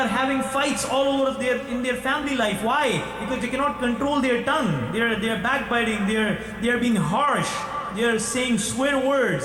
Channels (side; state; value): both; identical; correlation 1.00